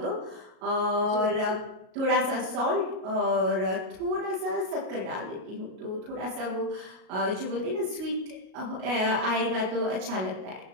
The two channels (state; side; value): late; left; 38 ms